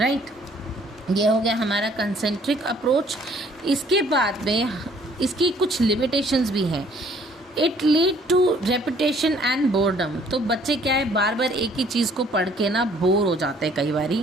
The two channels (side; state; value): both; normal; correlation 0.59